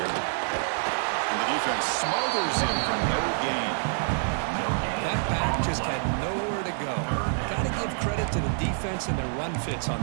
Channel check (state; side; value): silent; left; digital silence